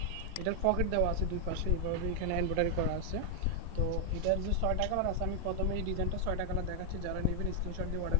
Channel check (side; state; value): both; different; correlation 0.00